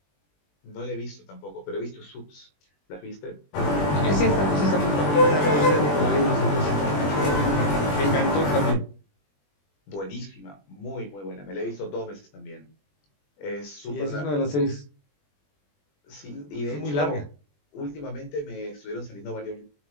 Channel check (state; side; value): late; right; 20 ms